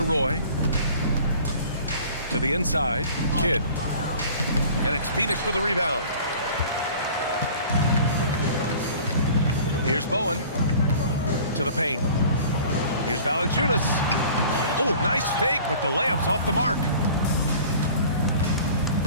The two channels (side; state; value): both; inverted; correlation -0.46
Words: Roy. To the inside. Kidd. And it's Phoenix for the rebound. Here's Bowen. To the paint. Here's Valanciunas. Oh, nice fake, but the layup's off the mark.